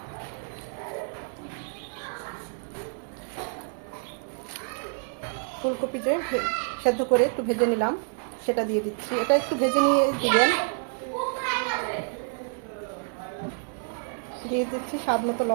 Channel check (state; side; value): silent; left; 56 dB below the other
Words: ফুলকপি যে সেদ্ধ করে একটু ভেজে নিলাম, সেটা দিয়ে দিচ্ছি। এটা একটু ভেজে নিয়ে দিবেন। দিয়ে দিচ্ছি স্বাদ মতো